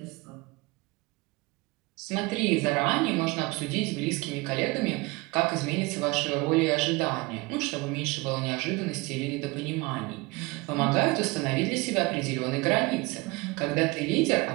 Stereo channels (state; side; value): quieter; left; 24.2 dB